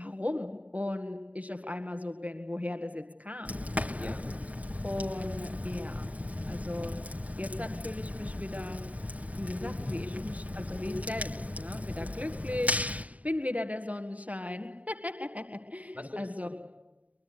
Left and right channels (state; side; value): late; left; 0.069 ms